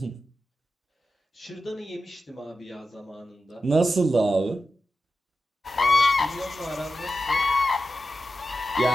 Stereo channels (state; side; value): normal; both; correlation 0.91